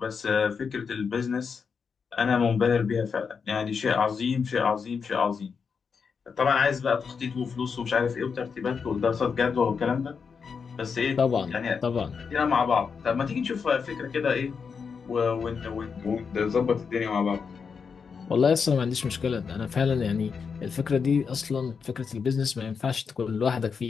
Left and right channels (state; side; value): quieter; right; 5.9 dB